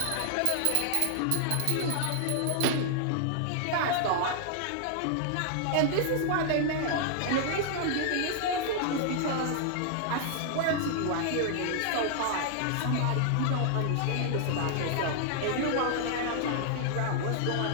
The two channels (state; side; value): different; both; correlation -0.01